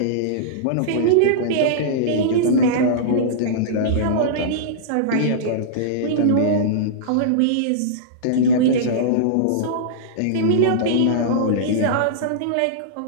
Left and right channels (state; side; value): different; both; correlation -0.03